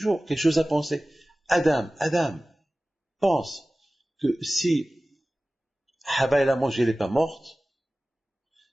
quelque chose à penser. Adam, pense que si Hava elle a mangé, elle n'est pas morte,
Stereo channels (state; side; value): normal; both; correlation 0.97